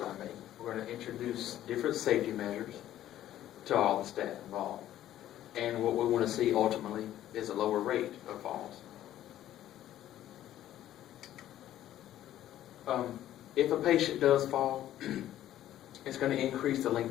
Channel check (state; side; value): quieter; right; 12.7 dB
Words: to make. We're going to introduce different safety measures to all the staff involved. And what we want to see ultimately is a lower rate of falls. If a patient does fall, it's going to increase the